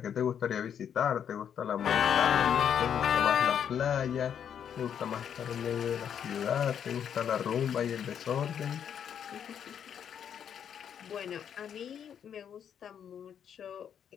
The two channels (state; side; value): quieter; right; 8.5 dB